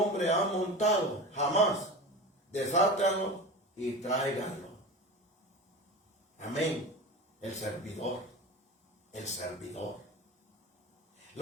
ha montado jamás. Desátanlo y tráiganlo. Amén. El servidor.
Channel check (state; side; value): normal; both; correlation 0.30